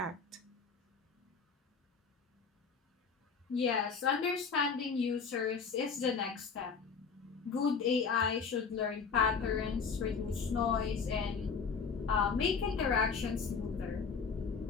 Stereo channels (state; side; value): quieter; right; 5.6 dB